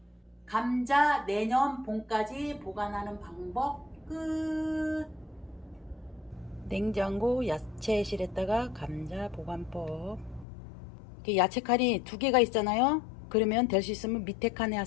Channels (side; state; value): right; drops out; at 10.5 s